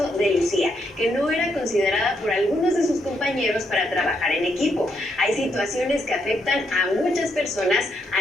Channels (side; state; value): both; normal; correlation 0.77